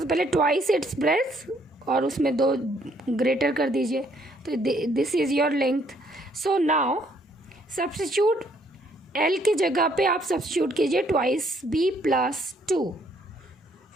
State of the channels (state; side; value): normal; both; correlation 0.67